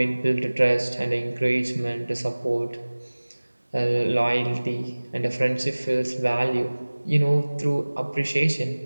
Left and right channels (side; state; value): both; inverted; correlation -1.00